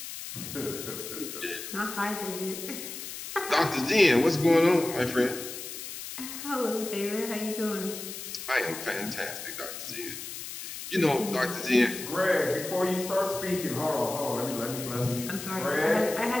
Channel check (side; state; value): left; noise; hiss, 9 dB below the sound